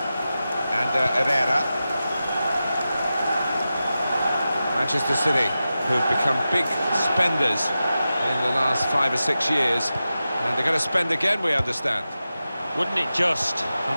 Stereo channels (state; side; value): inverted; both; correlation -0.93